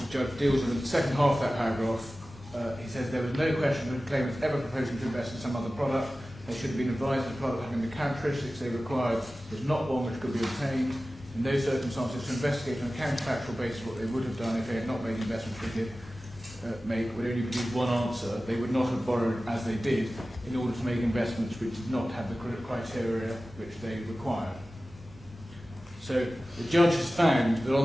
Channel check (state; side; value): normal; both; correlation 0.96